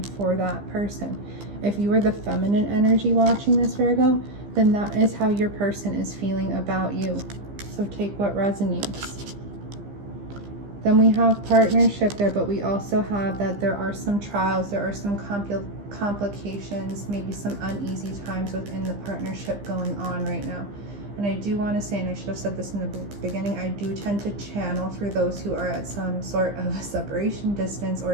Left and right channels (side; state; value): left; late; 15 ms